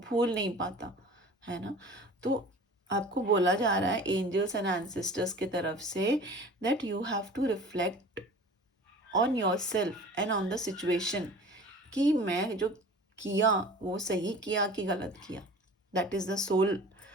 भूल नहीं पाता, है ना? तो आपको बोला जा रहा है एंजल्स एंड एंसेस्टर्स की तरफ से that you have to reflect on your self and on the situation, कि मैं जो किया वो सही किया कि गलत किया। That is the soul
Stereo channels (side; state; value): both; normal; correlation 0.42